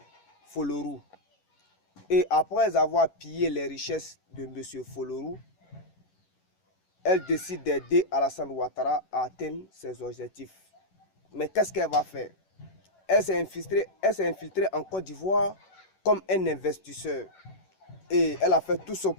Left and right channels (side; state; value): right; late; 11 ms